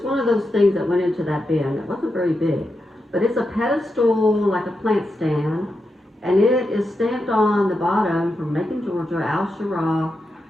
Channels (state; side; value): normal; both; correlation 0.87